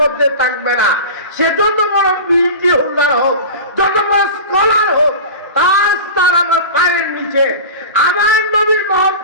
মধ্যে থাকবে না, সে যত বড় বিএনপি হোল্ডার হোক, যত বড় স্কলার হোক, তার আমার পায়ের নিচে। আমার নবীর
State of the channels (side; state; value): both; inverted; correlation -0.32